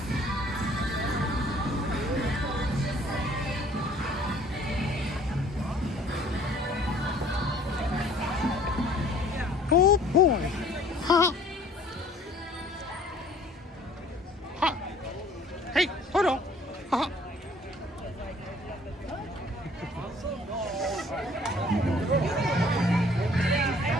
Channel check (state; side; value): normal; both; correlation 0.55